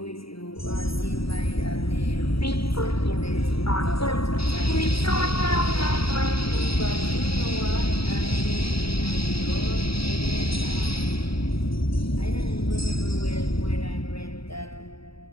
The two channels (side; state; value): right; late; 0.75 ms